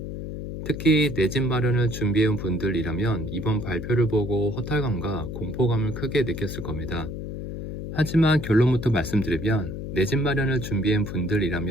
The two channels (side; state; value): left; noise; hum, 7 dB below the sound